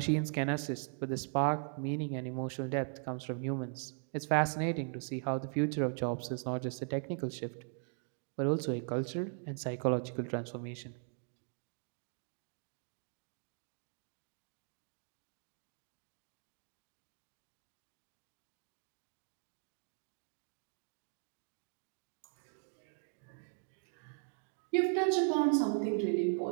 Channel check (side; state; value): left; silent; 52 dB below the other